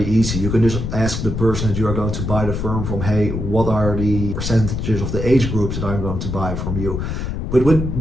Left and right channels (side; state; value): left; noise; rumble, 3 dB below the sound